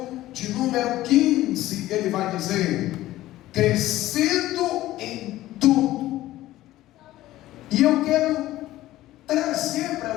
de número 15, ele vai dizer: crescendo em tudo. E eu quero trazer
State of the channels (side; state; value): right; quieter; 15.6 dB